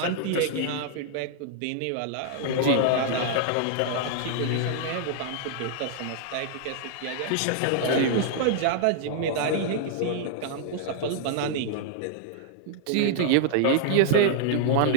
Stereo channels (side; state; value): both; different; correlation -0.01